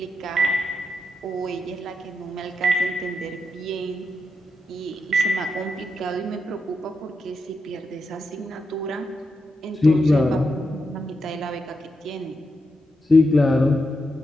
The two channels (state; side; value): normal; both; correlation 0.85